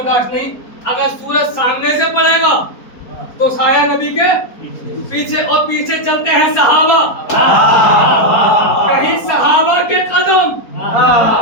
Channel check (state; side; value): late; right; 4.3 ms